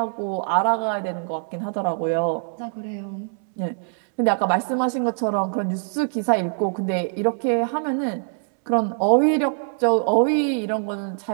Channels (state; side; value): silent; left; digital silence